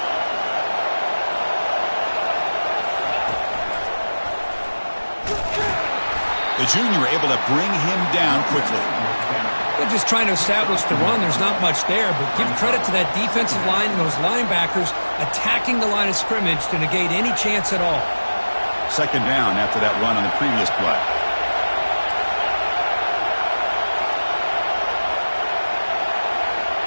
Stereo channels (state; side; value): inverted; both; correlation -1.00